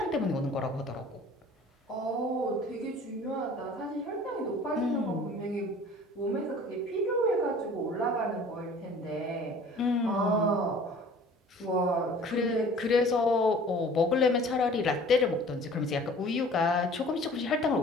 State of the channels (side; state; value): both; normal; correlation 0.48